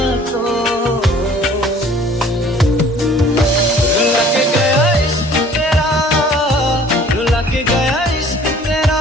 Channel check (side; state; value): both; normal; correlation 0.52